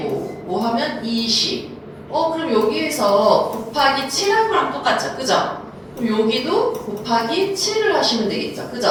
5 하면 20. 그럼 여기에서 곱하기 7한 거랑 똑같죠? 그죠? 그럼 여기도 곱하기 7을 하시면 되겠죠?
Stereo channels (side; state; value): both; identical; correlation 1.00